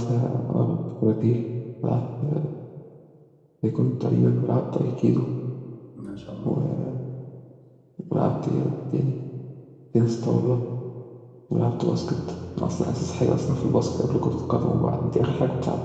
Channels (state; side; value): identical; both; correlation 1.00